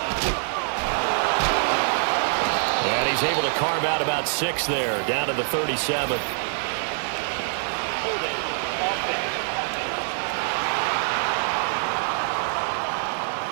And he's able to carve out about 6 there, down to the 37.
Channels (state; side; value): silent; left; digital silence